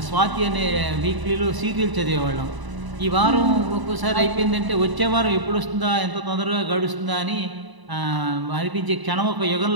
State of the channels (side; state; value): left; late; 1.0 ms